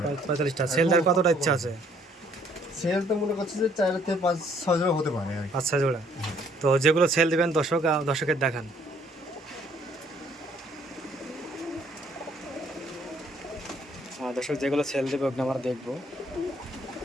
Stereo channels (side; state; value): both; normal; correlation 0.63